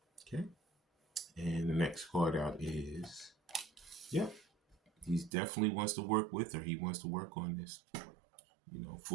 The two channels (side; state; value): left; drops out; at 5.3 s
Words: Okay. And the next card out is, yep. He definitely wants to work with her. He wants to work on this. You know,